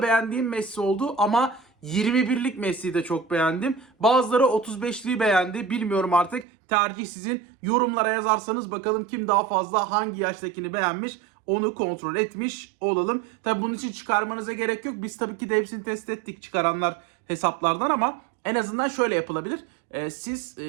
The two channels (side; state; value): left; drops out; at 6.5 s